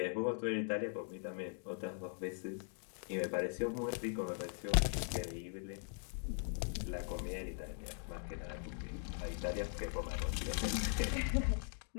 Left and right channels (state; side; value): silent; right; 51 dB below the other